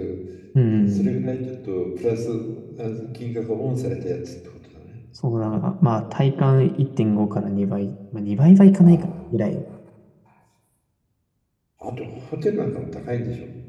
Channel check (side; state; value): both; identical; correlation 1.00